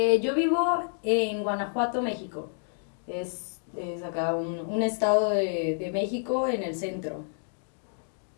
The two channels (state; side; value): silent; right; digital silence